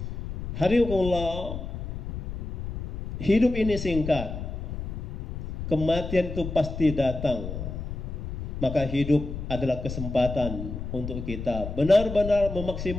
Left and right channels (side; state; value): left; noise; rumble, 7 dB below the sound